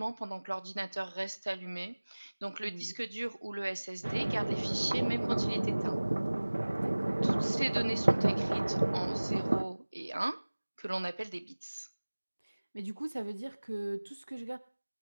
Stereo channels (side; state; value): both; inverted; correlation -1.00